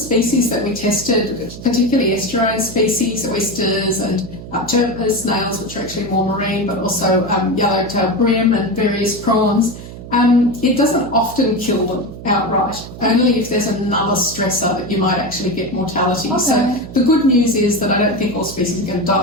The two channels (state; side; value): noise; right; hum, 13 dB below the sound